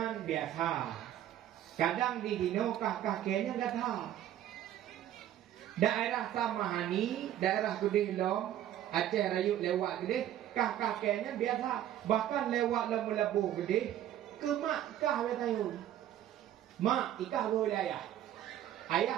biasa. Kadang di Dino kah kenya enggak tahu. Daerah Samahani, daerah Gede Long, Aceh Rayut lewat Gede, kah kenya biasa. Bahkan lewat Labu Gede ke mak kah betayun. Mak ikah boleh ayah.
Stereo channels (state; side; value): quieter; left; 11.8 dB